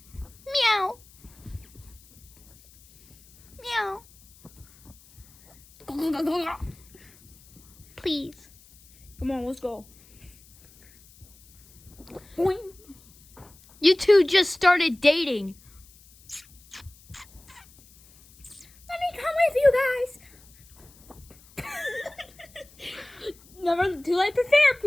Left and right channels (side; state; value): left; noise; hiss, 26 dB below the sound